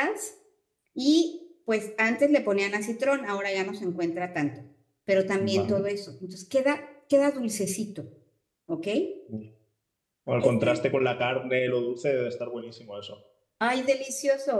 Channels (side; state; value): both; identical; correlation 1.00